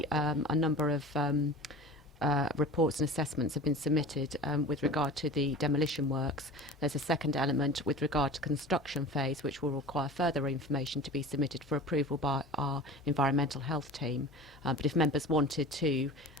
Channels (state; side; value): normal; both; correlation 0.36